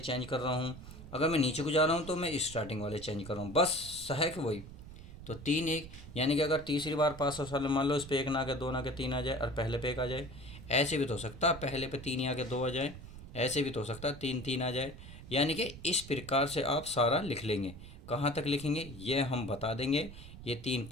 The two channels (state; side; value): noise; right; rumble, 14 dB below the sound